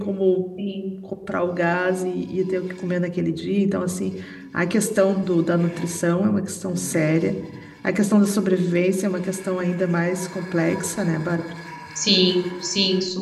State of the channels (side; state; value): both; identical; correlation 1.00